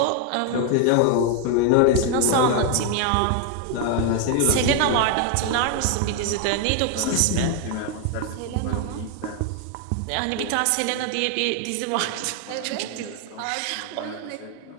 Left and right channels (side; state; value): both; different; correlation 0.01